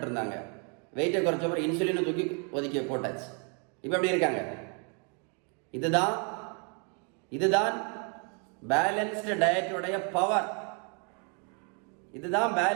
இருந்தாங்க. வெயிட்டை குறைச்ச பிறகு இன்சுலினை தூக்கி ஒதுக்கி போட்டாச்சு. இப்போ எப்படி இருக்காங்க? இதுதான் பேலன்ஸ்டு டயட்டுடைய பவர். இதுதான்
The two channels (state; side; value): quieter; left; 37.6 dB